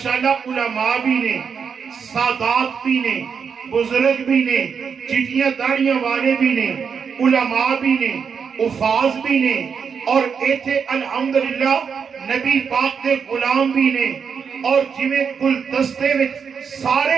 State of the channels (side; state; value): left; quieter; 6.4 dB